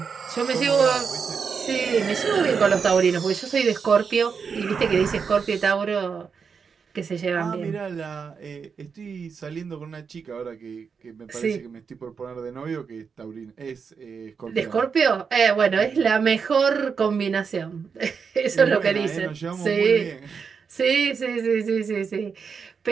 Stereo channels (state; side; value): quieter; left; 5.9 dB